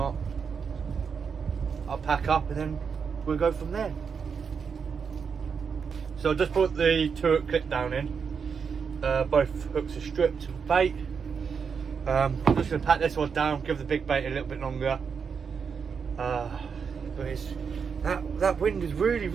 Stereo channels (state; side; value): quieter; left; 6.1 dB